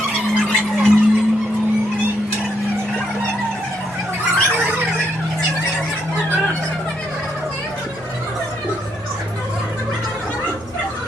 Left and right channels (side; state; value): both; normal; correlation 0.75